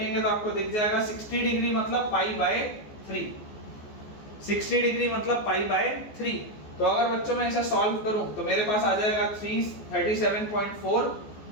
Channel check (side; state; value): right; late; 14 ms